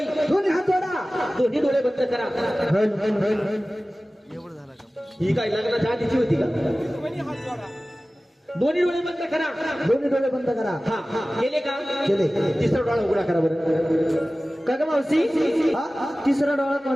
दोन्ही हात जोडा दोन्ही डोळे बंद करा ही काय लग्नाच्या आधीची होती का दोन्ही डोळे बंद करा दोन्ही डोळे बंद करा हा हा केले का केले. तिसरा डोळा उघडा करा बरं का ग मावशी हा? तिसरा डोळा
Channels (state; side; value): normal; both; correlation 0.97